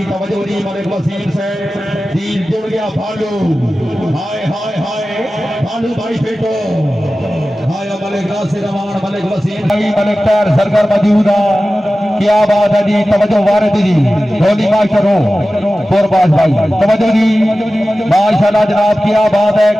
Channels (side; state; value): both; normal; correlation 0.95